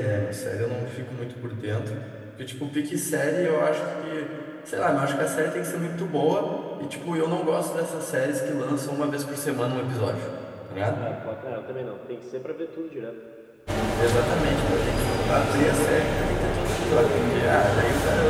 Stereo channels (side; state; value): both; identical; correlation 1.00